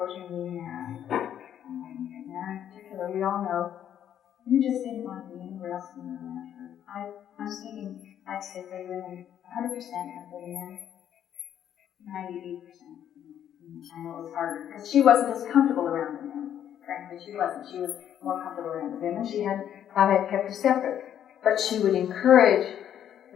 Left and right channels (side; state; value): right; quieter; 10.0 dB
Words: of being there. And there in particular, we all know you just didn't want to be anywhere else in the land. I'm speaking, I'd say for women, 100% of the men, 98%. I know it was harder, because she wasn't as comfortable around the men. Frankly, she wasn't. She was more comfortable around the women. Baba had kept her separate. But she would encourage